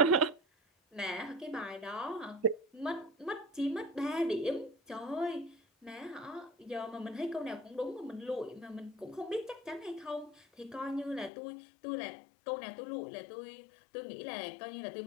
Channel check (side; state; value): right; drops out; at 11.3 s